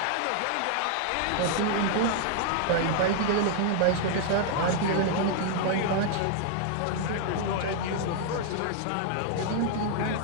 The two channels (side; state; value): both; different; correlation 0.00